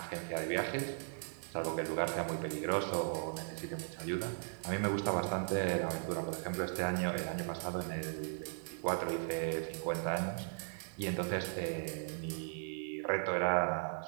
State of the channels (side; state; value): left; silent; digital silence